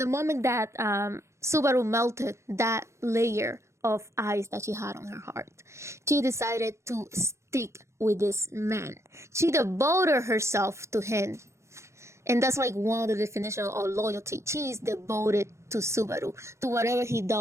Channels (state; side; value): late; left; 0.14 ms